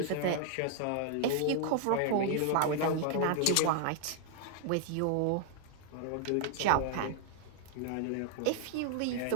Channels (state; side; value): different; both; correlation 0.00